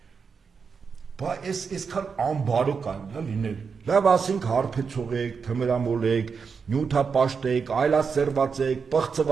Բա այսքան անբարո կարելի է լինել։ Լավ ասենք հարբեցող եք, թմրամոլ եք, նյութապաշտ եք, այլասերված եք,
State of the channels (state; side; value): quieter; left; 5.7 dB